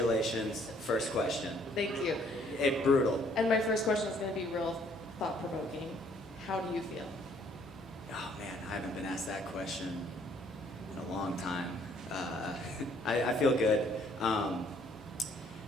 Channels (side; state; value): both; normal; correlation 0.63